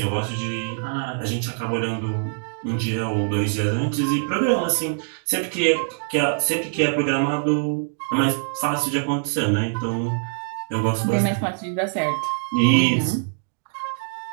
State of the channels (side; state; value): left; silent; digital silence